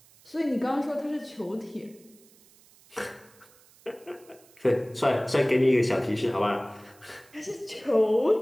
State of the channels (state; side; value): noise; right; hiss, 27 dB below the sound